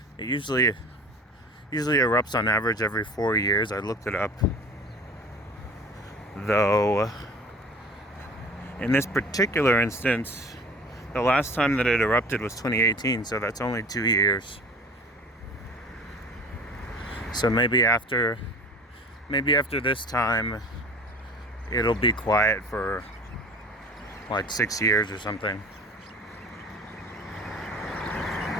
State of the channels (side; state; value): both; normal; correlation 0.41